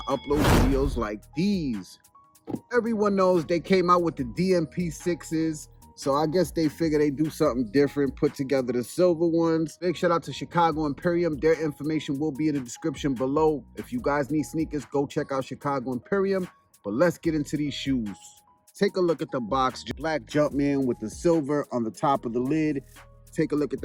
upload videos like these. Everyone knows they came out with the DMP 6s, so I guess they figured they'd do something different, put together the silver ones. Big shout out to Chicago Imperium. Their information will be in the description below. If you guys need sneakers, go check out Chicago Imperium. But let's get into these shoes. Take a look at the box. Black Jumpman with the silver on the top of the lid. Take a look at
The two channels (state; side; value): identical; both; correlation 1.00